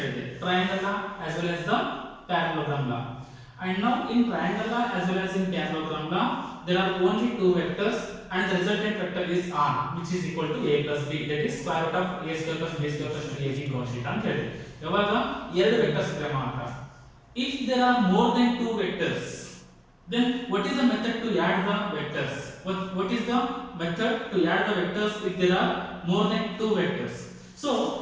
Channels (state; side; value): identical; both; correlation 1.00